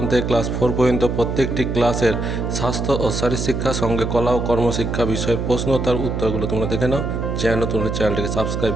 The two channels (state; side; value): noise; right; hum, 2 dB below the sound